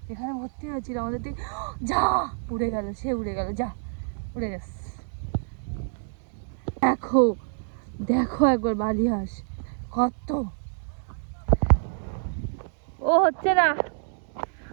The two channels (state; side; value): silent; left; digital silence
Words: এখানে ভর্তি হয়েছিল আমাদের দিকে, যা উড়ে গেল, সে উড়ে গেল, যা উড়ে গেছে। দেখো দেখো একবার বালি হাঁস কত, ও হচ্ছে না,